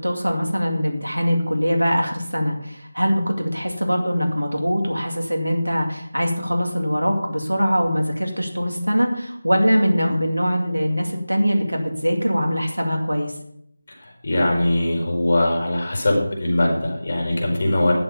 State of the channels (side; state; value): both; inverted; correlation -0.97